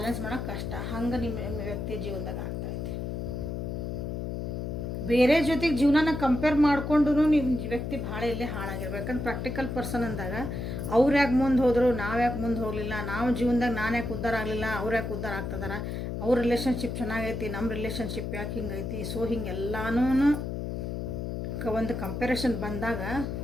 ಮಾಡೋಕೆ ಕಷ್ಟ. ಹಂಗೆ ನಿಮ್ಮ ವ್ಯಕ್ತಿ ಜೀವನದಾಗ ಆಗ್ತಾಯಿದೆ. ಬೇರೆ ಜೊತೆಗೆ ಜೀವನನ ಕಂಪೇರ್ ಮಾಡಿಕೊಂಡು ನಿಮ್ಮ ವ್ಯಕ್ತಿ ಭಾಳ ಇಲ್ಲೇ ಹಾಳಾಗಿರ್ಬೇಕು. ಯಾಕಂದ್ರೆ ಪ್ರಾಕ್ಟಿಕಲ್ ಪರ್ಸನ್ ಅಂದಾಗ ಅವ್ರು ಯಾಕೆ ಮುಂದೆ ಹೋದರು, ನಾವು ಯಾಕೆ ಮುಂದೆ ಹೋಗಲಿಲ್ಲ, ನಾವು ಜೀವನದಾಗ ನಾನು ಯಾಕೆ ಉದ್ಧಾರ ಆಗಲಿಲ್ಲ, ಅವ್ರು ಯಾಕೆ ಉದ್ಧಾರ ಆಗ್ತದಾರ, ಅವ್ರ ರಿಲೇಷನ್ಶಿಪ್ ಚೆನ್ನಾಗೈತಿ, ನಮ್ಮ ರಿಲೇಷನ್ಶಿಪ್ ಯಾಕೆ ಹಿಂಗೈತಿ. ಸೊ ಹಿಂಗೆಲ್ಲನೂ ಒಂದು ಕಂಪ್ಯಾರಿಸನ್ ಬಂದಾಗ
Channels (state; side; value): noise; left; hum, 4 dB below the sound